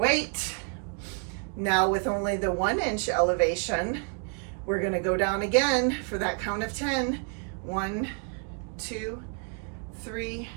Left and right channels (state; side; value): quieter; left; 38.2 dB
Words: Now with only the 1 inch elevation, we're gonna go down again for that count of 10. 1, 2, 3,